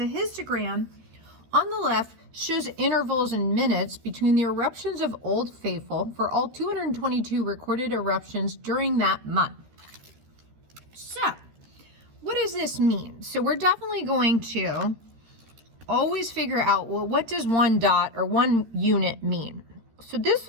histogram on the left shows intervals in minutes between the eruptions of Old Faithful for all 222 recorded eruptions during that month. So what does this mean? So we're definitely going to always figure out, well, what does one dot or one unit mean? So this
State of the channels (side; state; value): left; late; 13 ms